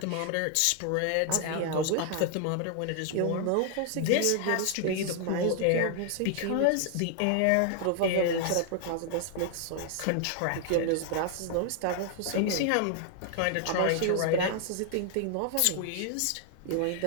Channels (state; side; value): different; both; correlation 0.00